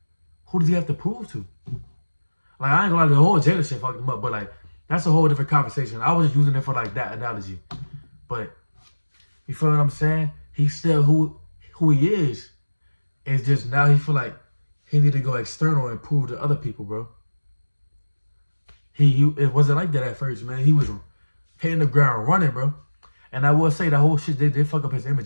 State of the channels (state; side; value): inverted; both; correlation -1.00